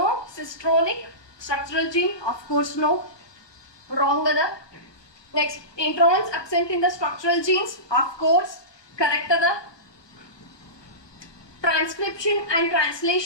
structural gene, of course no, wrong ada. Next, introns absent in the structural genes, of course correct ada. Transcription and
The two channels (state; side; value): late; right; 1.3 ms